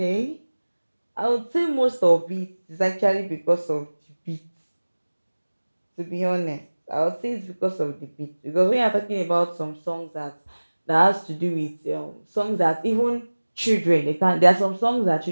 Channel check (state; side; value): inverted; both; correlation -1.00